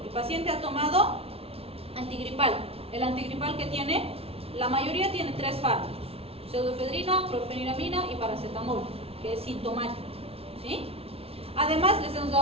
el paciente ha tomado antigripal. El antigripal que tiene, la mayoría tiene 3 fármacos: pseudoefedrina, clorfeniramina y paracetamol, que es sintomático. ¿Sí? Además les hemos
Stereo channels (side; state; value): left; late; 0.28 ms